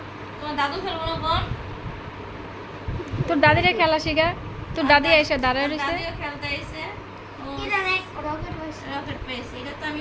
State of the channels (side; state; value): both; identical; correlation 1.00